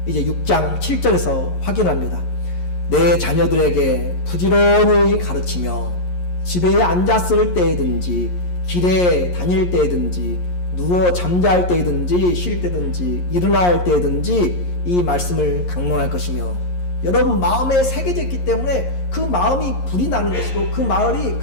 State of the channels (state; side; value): late; right; 11 ms